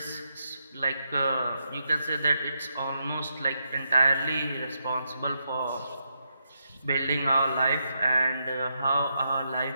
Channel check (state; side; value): inverted; both; correlation -0.82